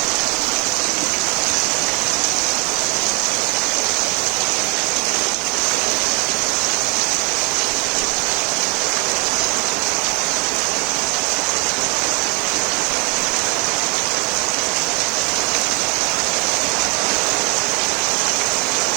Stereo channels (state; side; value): quieter; left; 30.3 dB